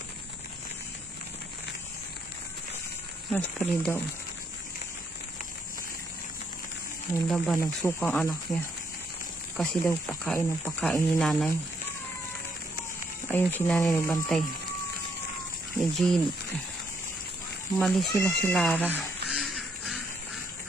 Raspberry daw. Ayun daw ba, nagsukang anak niya. Kasi daw pakain ng pakain ni nanay. Ayun si nanay nagbantay. Ni Jean. Umalis sila si Lara.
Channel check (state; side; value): normal; both; correlation 0.73